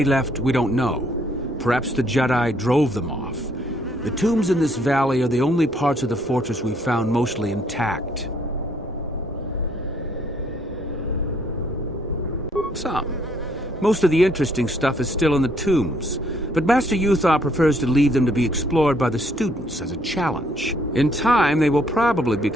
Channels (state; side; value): normal; both; correlation 0.67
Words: left, we don't know. Perhaps the Jedi drove them off. The tombs in this valley are the only parts of the fortress we found mostly intact. Some. Most of the interesting stuff is still in the tombs, but Master Uthar prefers to leave them to be explored by the students as a challenge. In time, they will probably